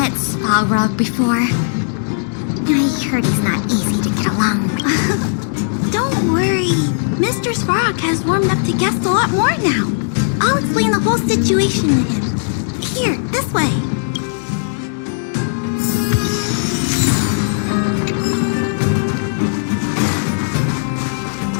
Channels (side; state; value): right; silent; digital silence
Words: Spalrog before. I heard he's not easy to get along with. Don't worry. Mr. Svarog has warmed up to guests a lot more now. I'll explain the whole situation to him. Here, this way.